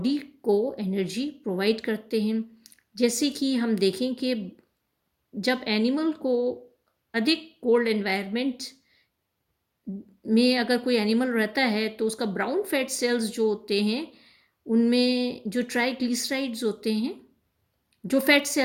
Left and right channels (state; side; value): identical; both; correlation 1.00